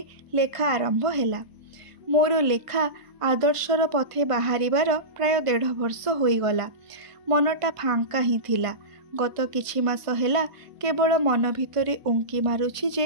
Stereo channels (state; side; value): late; left; 1.5 ms